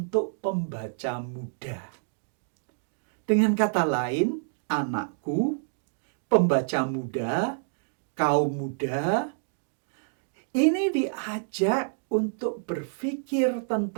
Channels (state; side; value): silent; left; digital silence